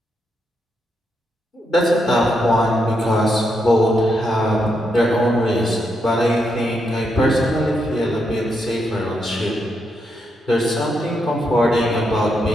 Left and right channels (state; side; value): normal; both; correlation 0.81